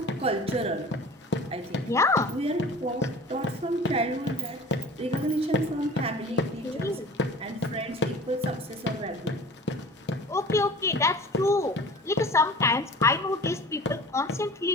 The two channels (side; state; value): both; normal; correlation 0.42